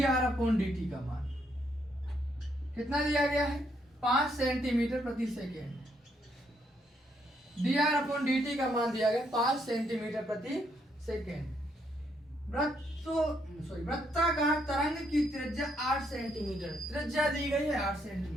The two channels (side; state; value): both; normal; correlation 0.74